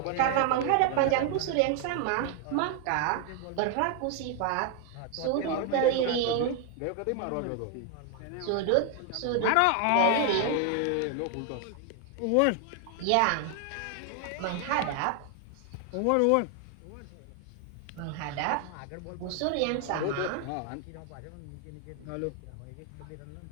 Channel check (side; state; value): both; different; correlation 0.00